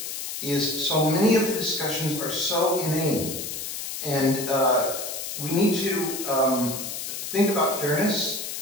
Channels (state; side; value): noise; left; hiss, 6 dB below the sound